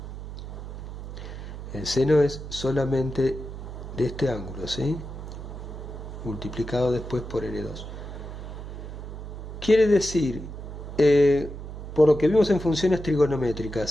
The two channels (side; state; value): right; noise; hum, 9 dB below the sound